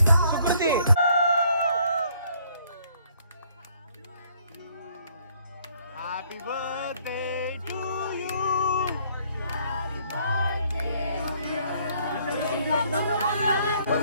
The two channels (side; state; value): both; inverted; correlation -0.65